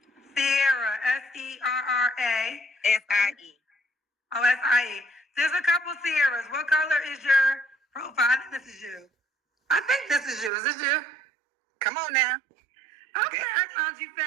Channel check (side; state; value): left; drops out; at 10.5 s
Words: Sierra, Serra. S-I-E. Oh, S-I-E. There's a couple Sierras. What color is your profile? I think this is you. I think this is you. Is this you? Come on now. Okay, I found you